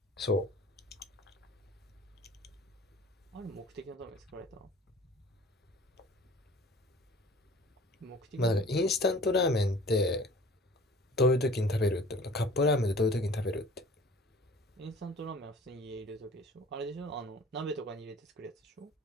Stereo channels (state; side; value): normal; both; correlation 0.47